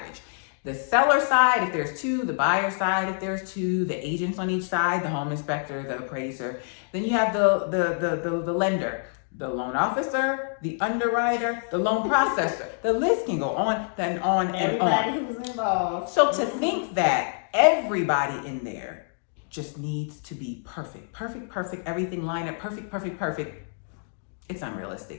The seller side, if there's 2, the buyer side, if there's 2, the agents on each side, the home inspector, the appraiser. Then you have the lender, the loan officer, the underwriter, the loan processor. The list can go on, then on and on. Everybody who's involved. So to think that everybody in there just needs to be perfect, everything line up, perfect, it's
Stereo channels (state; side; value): silent; right; 61 dB below the other